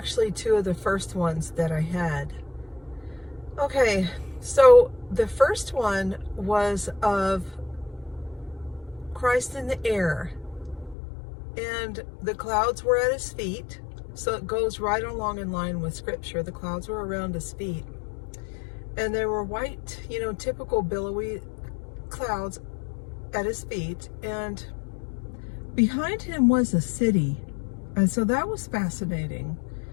two of the first ones that I had. Okay, so the first one was of Christ in the air, and the clouds were at his feet, so it goes right along in line with scripture. The clouds were around his feet, and they were white, typical billowy clouds at his feet, and behind him was a city, and so that was fascinating.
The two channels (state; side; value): drops out; right; at 11.0 s